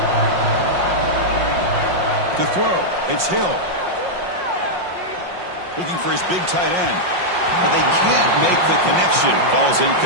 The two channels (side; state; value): left; late; 5.6 ms